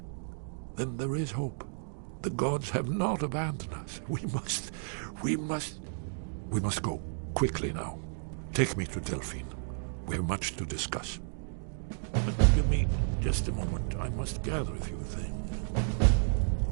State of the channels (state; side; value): silent; left; digital silence